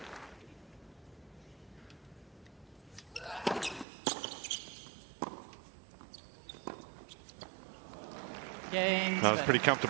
Cain. That was pretty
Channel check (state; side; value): drops out; left; at 3.9 s